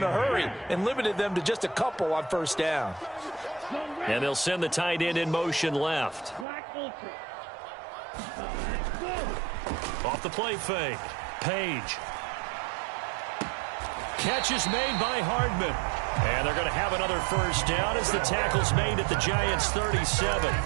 a hurry and limited them to just a couple on first down. And they'll send the tight end in motion left. Off the play fake. Page. Catch is made by Hardman. And they're going to have another first down as the tackle's made at the Giants' 37.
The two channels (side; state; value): left; drops out; at 6.5 s